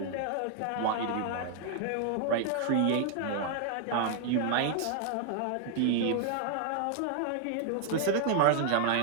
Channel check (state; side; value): different; both; correlation 0.00